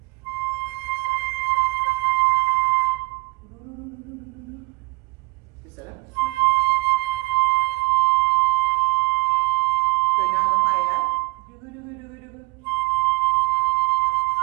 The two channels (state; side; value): quieter; left; 26.3 dB